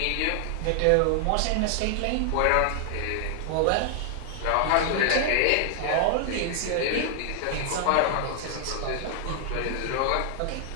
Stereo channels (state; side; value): different; both; correlation 0.00